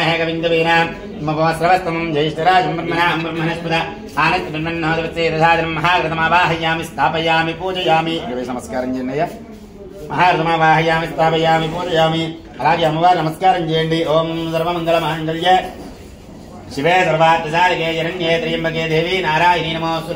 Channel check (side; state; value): both; identical; correlation 1.00